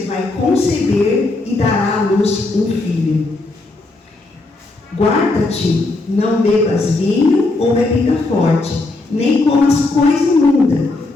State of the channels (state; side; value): quieter; right; 3.2 dB